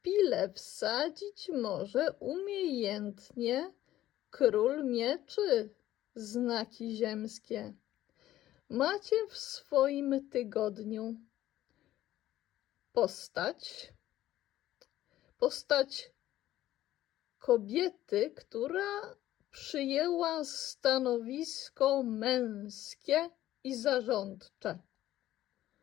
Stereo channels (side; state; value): right; quieter; 13.9 dB